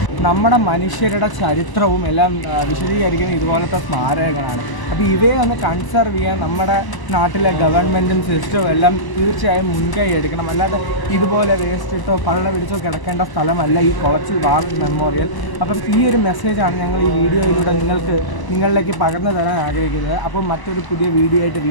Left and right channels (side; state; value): right; late; 1.0 ms